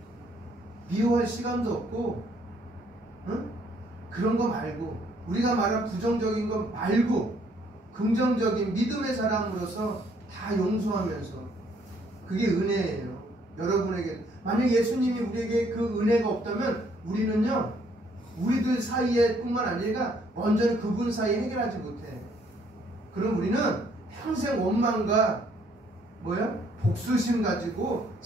미워할 시간도 없고, 응? 그런 거 말고, 우리가 말한 부정적인 거 말고 긍정적인 믿음의 사람으로서 다 용서하면서, 그게 은혜예요. 여러분에게 만약 예수님이 우리에게 그 은혜가 없다면 우리는요, 우리들 사이에 뿐만 아니라 완전히 그분 사이에 해결하지 못해. 그럼 우리는 평생 원망과 복수심 가지고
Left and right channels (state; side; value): normal; both; correlation 0.66